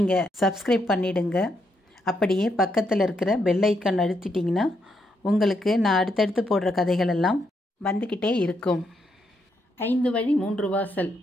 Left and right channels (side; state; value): both; normal; correlation 0.78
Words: சப்ஸ்கிரைப் பண்ணிவிடுங்க. அப்படியே பக்கத்தில் இருக்கிற பெல் ஐக்கான் அழுத்திட்டிங்கன்னா உங்களுக்கு நான் அடுத்தடுத்து போடுற கதைகள் எல்லாம் வந்துக்கிட்டே இருக்கும். 5 வழி 3 வாசல்.